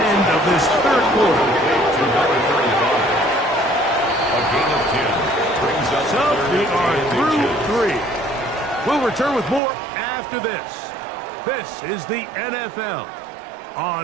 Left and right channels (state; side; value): drops out; left; at 9.6 s